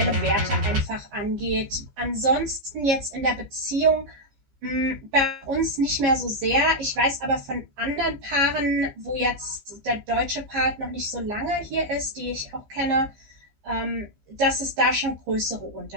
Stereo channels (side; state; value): left; late; 15 ms